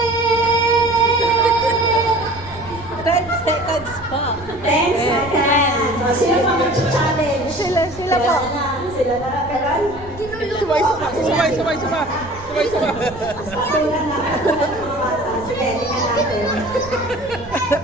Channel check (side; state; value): right; noise; rumble, 17 dB below the sound